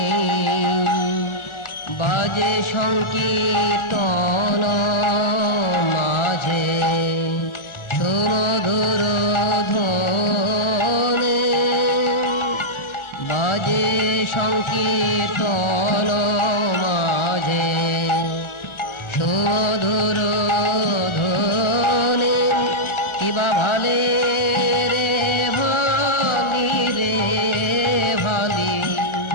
বাজে সংকীর্তন মাঝে সুমধুর ধ্বনি বাজে সংকীর্তন মাঝে সুমধুর ধ্বনি কিবা ভালে রে ভালি রে ভালি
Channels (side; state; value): right; late; 1.4 ms